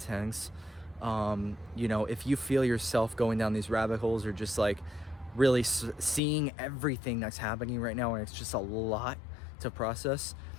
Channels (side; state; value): right; drops out; at 6.2 s